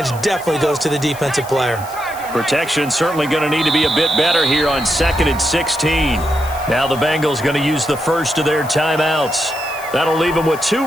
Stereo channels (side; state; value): left; noise; hiss, 17 dB below the sound